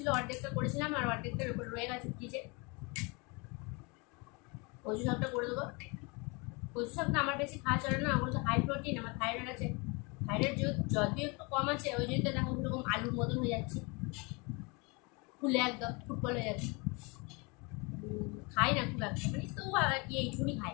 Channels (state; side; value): quieter; right; 29.1 dB